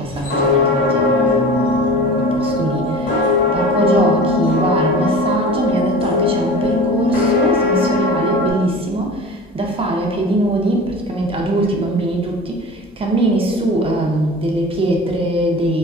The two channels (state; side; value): normal; both; correlation 0.37